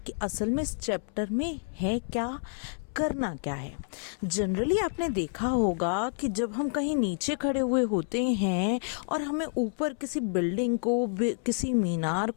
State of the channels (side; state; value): right; silent; 58 dB below the other